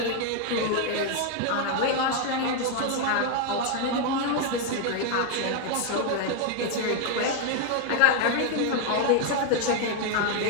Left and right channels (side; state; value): both; different; correlation 0.00